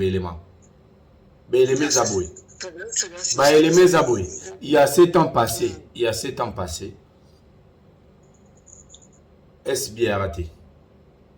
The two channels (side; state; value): both; identical; correlation 1.00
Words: élément. Bélémé Zaboui. Bélémé Zaboui. Il y a 7 ans passés. Est-ce bien raté?